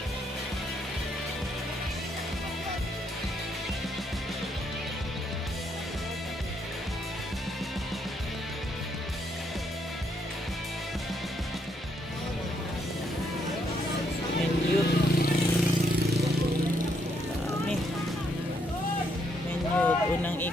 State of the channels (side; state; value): both; normal; correlation 0.74